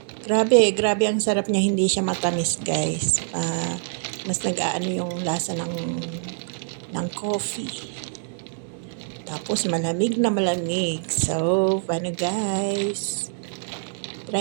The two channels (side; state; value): left; silent; digital silence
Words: Grabe ang sarap niya. Hindi siya matamis guys. Mas nag-aano yung lasa ng coffee. Tapos malamig na malamig. So, paano guys?